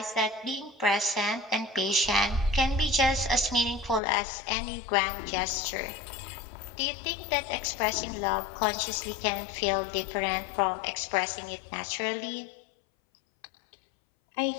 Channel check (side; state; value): right; drops out; at 4.0 s